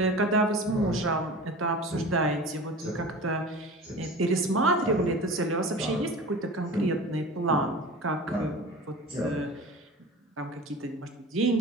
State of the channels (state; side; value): normal; both; correlation 0.36